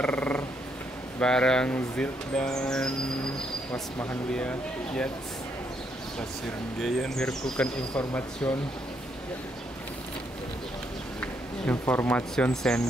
bareng Zil dan Was Mahanlia. Yes, Pasirgeyen Mirkukan Information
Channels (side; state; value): both; normal; correlation 0.75